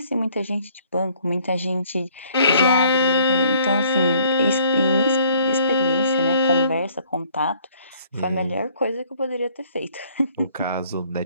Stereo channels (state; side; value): inverted; both; correlation -0.60